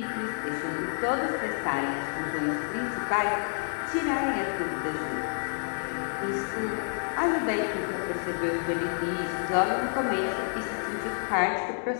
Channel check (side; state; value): right; silent; digital silence